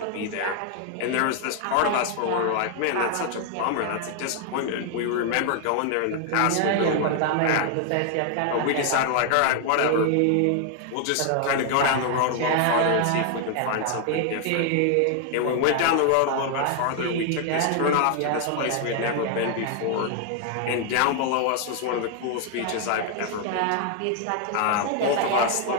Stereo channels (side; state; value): both; different; correlation 0.00